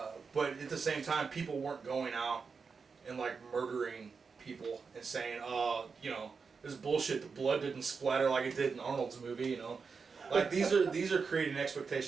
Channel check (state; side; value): quieter; left; 5.2 dB